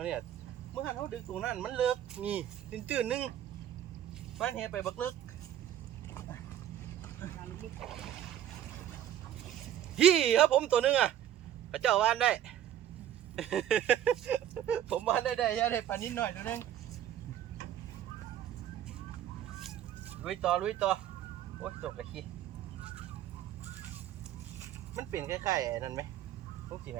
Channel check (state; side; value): quieter; left; 11.2 dB